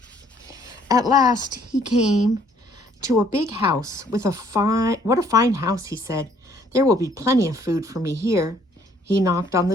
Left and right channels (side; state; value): both; normal; correlation 0.63